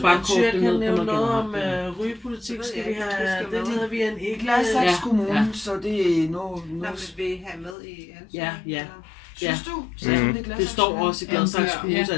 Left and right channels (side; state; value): right; drops out; at 7.8 s